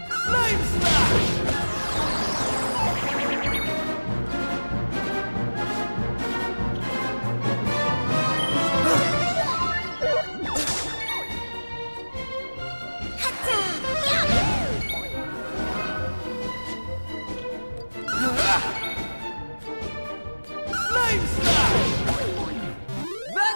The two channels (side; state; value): both; inverted; correlation -1.00